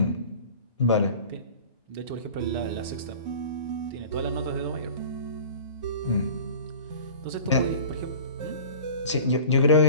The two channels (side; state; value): both; inverted; correlation -0.41